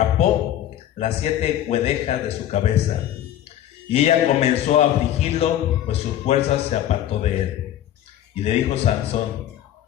las 7 guedejas de su cabeza. Y ella comenzó a afligirlo, pues sus fuerzas se apartó de él. Y le dijo Sansón:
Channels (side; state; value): right; quieter; 11.8 dB